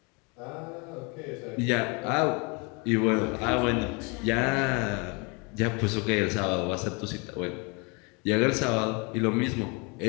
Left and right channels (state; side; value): quieter; right; 31.0 dB